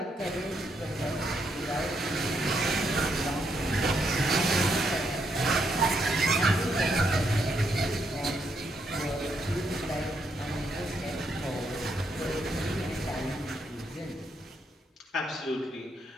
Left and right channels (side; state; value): both; normal; correlation 0.77